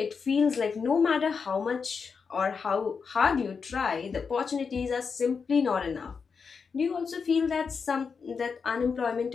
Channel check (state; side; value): quieter; right; 5.6 dB